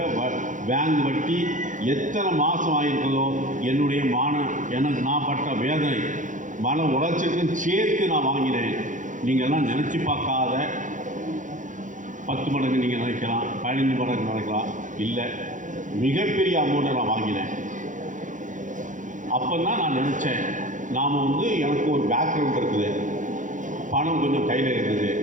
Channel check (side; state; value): left; late; 0.37 ms